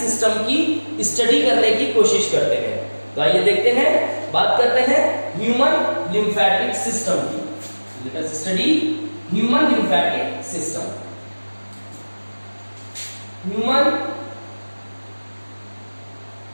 की स्टडी करने की कोशिश करते हैं। तो आइए देखते हैं, बात करते हैं ह्यूमन लिम्फेटिक सिस्टम की। Let us study human lymphatic system. Human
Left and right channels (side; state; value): both; inverted; correlation -1.00